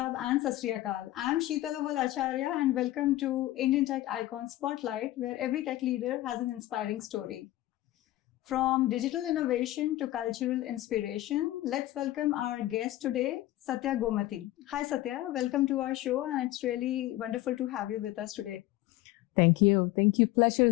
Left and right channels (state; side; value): quieter; right; 16.0 dB